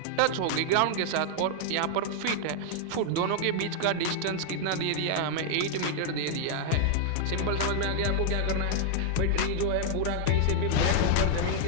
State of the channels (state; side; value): different; both; correlation -0.01